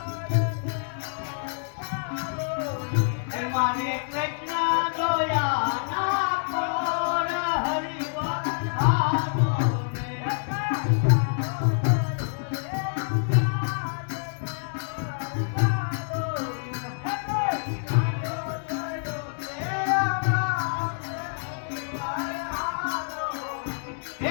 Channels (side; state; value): right; silent; 60 dB below the other